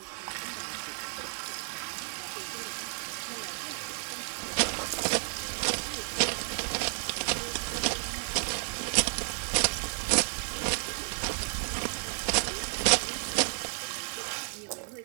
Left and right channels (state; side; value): silent; left; digital silence